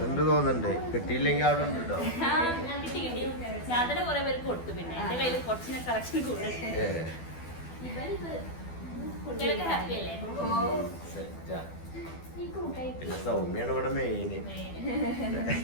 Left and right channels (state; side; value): late; right; 12 ms